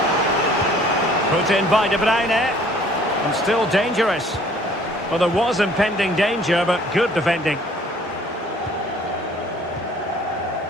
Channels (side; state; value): both; normal; correlation 0.56